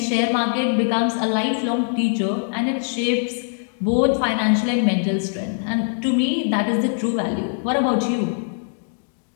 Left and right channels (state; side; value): silent; right; digital silence